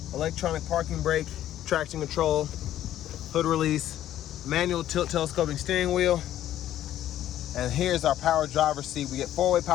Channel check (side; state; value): right; quieter; 12.3 dB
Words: electronic parking brake, traction control, hood release, manual tilt telescoping steering wheel. And here's our power driver's seat. We get 4-way